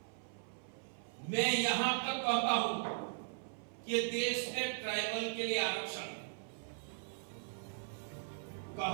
मैं यहां तक कहता हूं कि देश में ट्राइबल के लिए आरक्षण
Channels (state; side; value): silent; left; 52 dB below the other